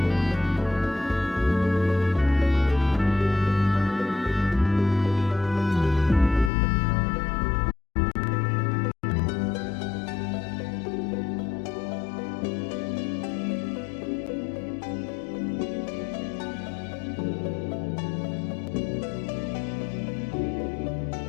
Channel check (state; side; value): drops out; right; at 6.5 s